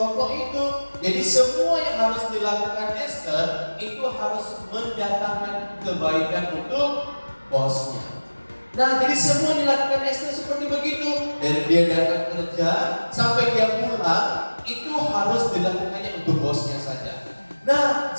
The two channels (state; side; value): inverted; both; correlation -1.00